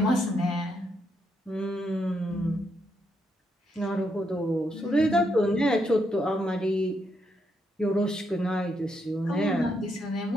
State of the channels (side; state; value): both; normal; correlation 0.78